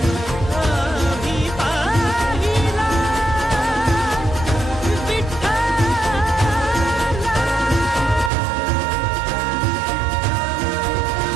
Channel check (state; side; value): drops out; left; at 8.3 s